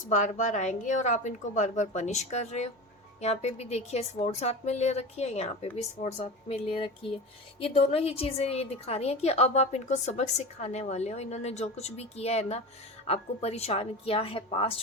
बार बार आएंगे, और आप इनको बार बार पनिश कर रहे हो। यहाँ पे भी देखिए स्वॉर्ड साथ में ले रखी है, यहाँ पे भी स्वॉर्ड साथ में ले रखी है। ये दोनों ही चीज़ें ये दिखा रही हैं कि अब आप इनको सबक सिखाने वाले हो। इन्होंने जो कुछ भी किया है ना, आपको परेशान किया है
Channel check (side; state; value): both; normal; correlation 0.28